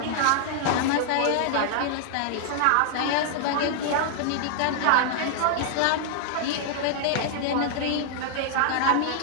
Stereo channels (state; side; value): different; both; correlation -0.01